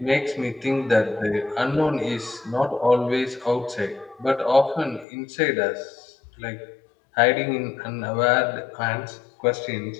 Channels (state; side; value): drops out; right; at 5.1 s